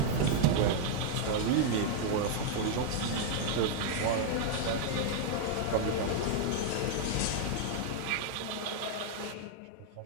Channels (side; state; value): both; different; correlation 0.00